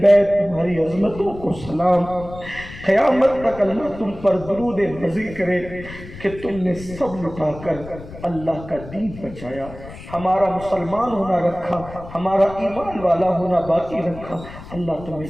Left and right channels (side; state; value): left; noise; rumble, 15 dB below the sound